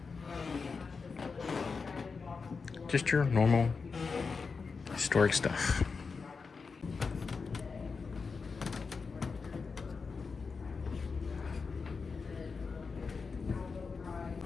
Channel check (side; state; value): right; quieter; 4.9 dB